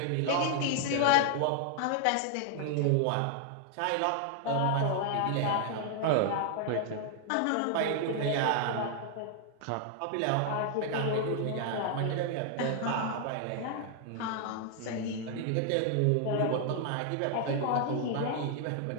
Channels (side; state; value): both; different; correlation 0.00